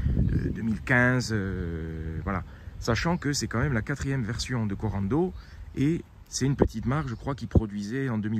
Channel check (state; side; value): identical; both; correlation 1.00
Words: 2015. Voilà. Sachant que c'est quand même la 4e version de Corando et c'est une petite marque, je crois, qui produisait en